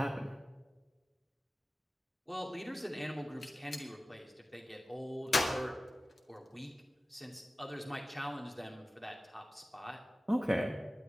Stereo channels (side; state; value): both; normal; correlation 0.96